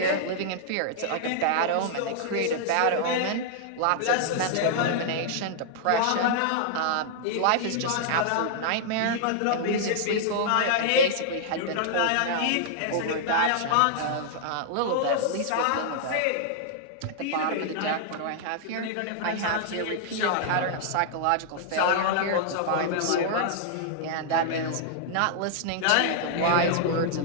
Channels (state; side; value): different; both; correlation -0.01